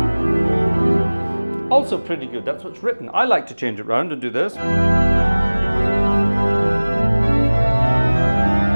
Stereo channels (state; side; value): inverted; both; correlation -1.00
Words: also pretty good. That's what's written. I like to change it around and do this.